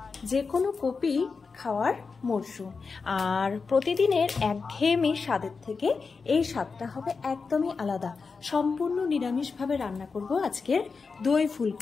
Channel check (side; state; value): right; quieter; 4.8 dB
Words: যে কোনো কপি খাওয়ার মরশুম, আর প্রতিদিনের একঘেয়েমি স্বাদের থেকে এই স্বাদটা হবে একদমই আলাদা। সম্পূর্ণ নিরামিষভাবে রান্না করব আজকের দই